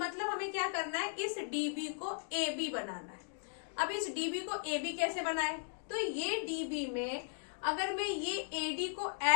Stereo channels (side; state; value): right; silent; digital silence